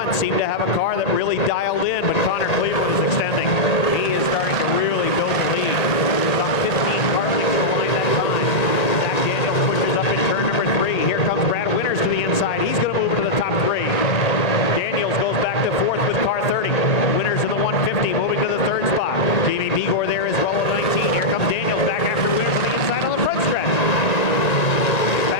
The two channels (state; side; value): late; right; 1.8 ms